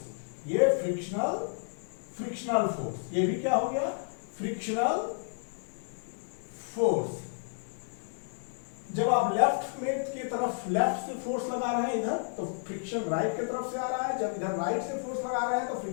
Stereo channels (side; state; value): right; silent; digital silence